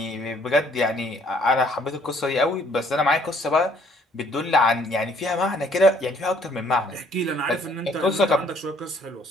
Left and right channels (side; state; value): both; normal; correlation 0.62